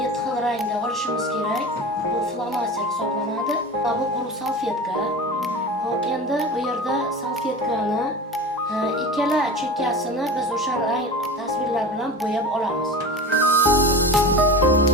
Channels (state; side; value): normal; both; correlation 0.32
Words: xil rangda olishimiz kerak. Bu flomaster hisoblanadi. Bu quruq salfetka. Hop, endi bu yerda salfetkani ikkala chekkasini biz o'sha rang tasvirlar bilan bo'yab olamiz.